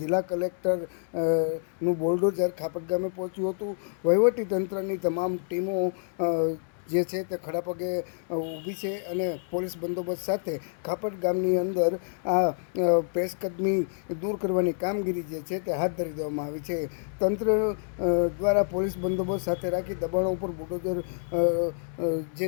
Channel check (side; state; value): right; silent; 59 dB below the other